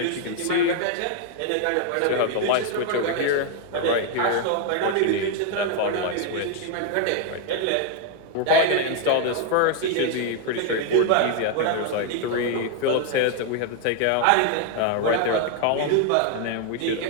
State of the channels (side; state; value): both; different; correlation 0.01